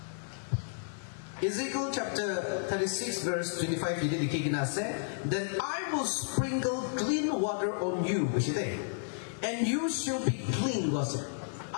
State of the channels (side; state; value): right; silent; 56 dB below the other